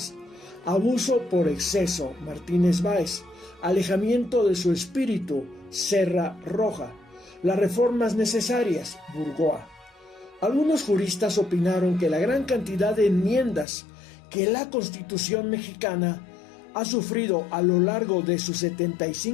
Abuso por exceso, Martínez Báez. Alejamiento de su espíritu, Serra Roja. Las reformas necesarias, Burgoa. Algunos juristas opinaron que la gran cantidad de enmiendas que la Constitución mexicana ha sufrido a lo largo de sus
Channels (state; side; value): drops out; right; at 13.7 s